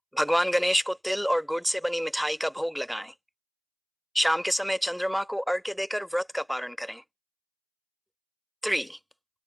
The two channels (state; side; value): identical; both; correlation 1.00